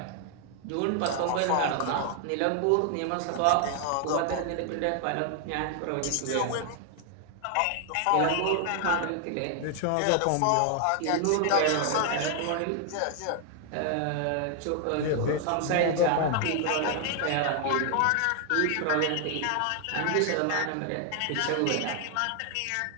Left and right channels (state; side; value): different; both; correlation 0.00